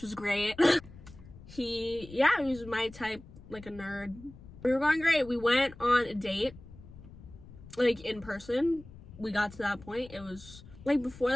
was great. He was my type, like a nerd. We were going great. We went on a date, like in person. We got to that point. It was like before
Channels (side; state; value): left; noise; rumble, 18 dB below the sound